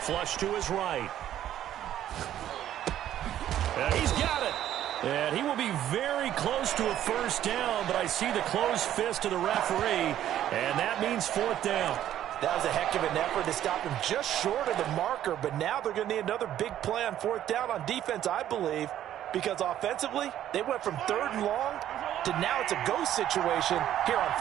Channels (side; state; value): left; quieter; 11.7 dB